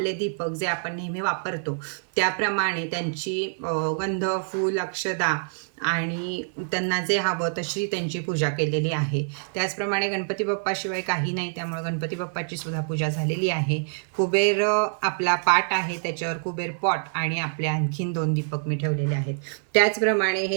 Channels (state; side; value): silent; left; 55 dB below the other